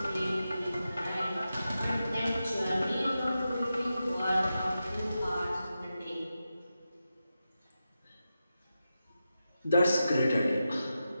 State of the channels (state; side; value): inverted; both; correlation -0.90